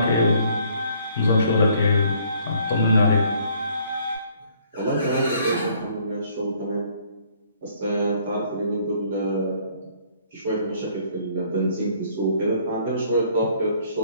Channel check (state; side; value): inverted; both; correlation -0.62